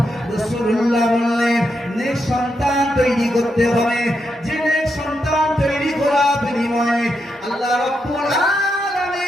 রাসূলুল্লাহ বললেন নেক সন্তান তৈরি করতে হবে, যে নেক সন্তান তৈরি করার বিনিময়ে আল্লাহ রাব্বুল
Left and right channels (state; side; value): normal; both; correlation 0.83